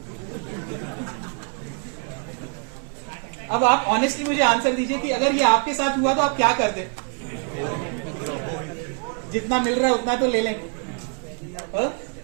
अब आप ऑनेस्टली मुझे आंसर दीजिए कि अगर ये आपके साथ हुआ तो आप क्या करते? जितना मिल रहा है उतना तो ले लें।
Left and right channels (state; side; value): quieter; left; 39.0 dB